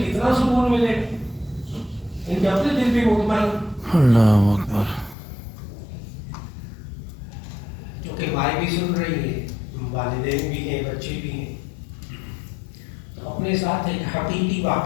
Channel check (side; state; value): right; drops out; at 5.2 s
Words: سکون ملے, ان کے اپنے دل بھی مطمئن. اللہ اکبر. کیونکہ مائیں بھی سن رہی ہیں, والدین بھی ہیں, بچے بھی ہیں, تو اپنے ساتھ ایک حقیقی